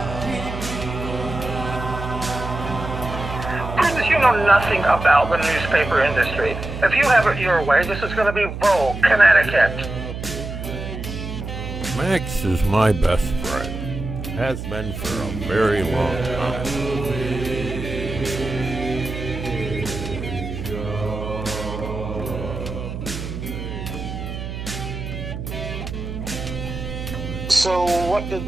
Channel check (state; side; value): noise; right; hum, 7 dB below the sound